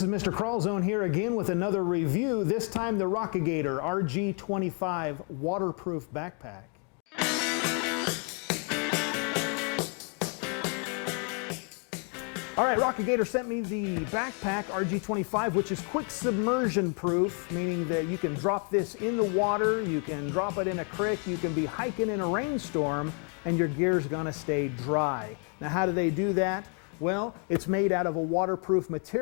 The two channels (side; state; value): right; quieter; 38.9 dB